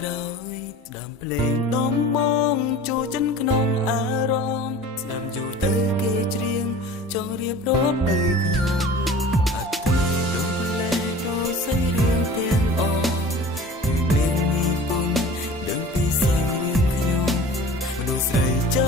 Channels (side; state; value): both; normal; correlation 0.42